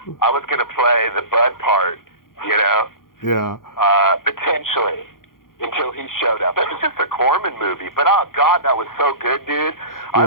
was going to play the Bud part, Yeah. Potentially, until he showed up. It was just a Corman movie, but oh God, that was so good, dude. I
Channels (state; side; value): late; right; 0.91 ms